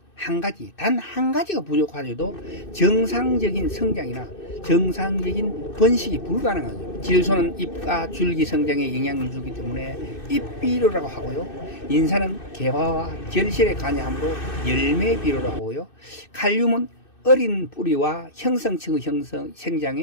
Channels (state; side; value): late; right; 2.6 ms